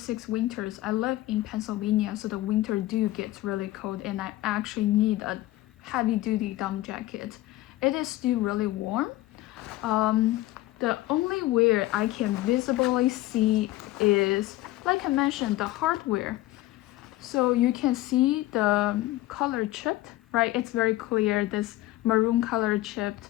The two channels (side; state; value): right; quieter; 16.8 dB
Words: winters. I live in Pennsylvania, so the winter gets really cold, and I actually need a heavy-duty down jacket. It is still really warm. The only wear I can visibly see is, like I mentioned, the hardware. So you can see the color chipped, right? It's very clear, this maroon color chipped